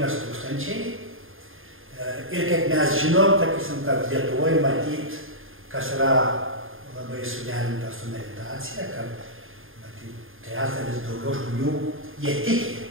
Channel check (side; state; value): left; late; 0.59 ms